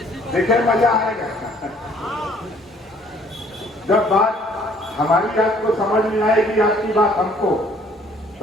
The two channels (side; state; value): both; normal; correlation 0.59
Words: देखे मजा आएगा। जब बात हमारी आपको समझ में आएगी, आपकी बात हमको,